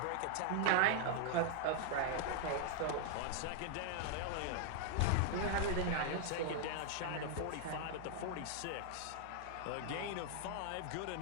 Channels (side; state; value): both; different; correlation 0.00